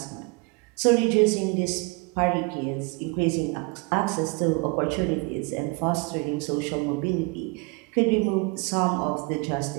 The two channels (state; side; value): quieter; left; 28.3 dB